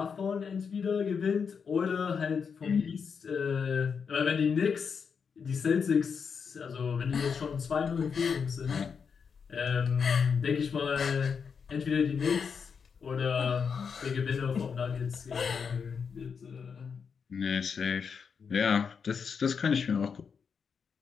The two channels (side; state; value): right; quieter; 6.2 dB